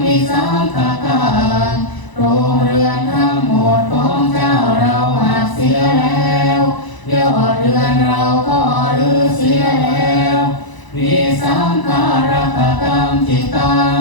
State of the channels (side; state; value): right; late; 1.0 ms